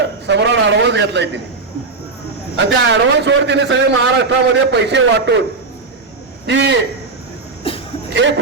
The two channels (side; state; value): left; quieter; 4.1 dB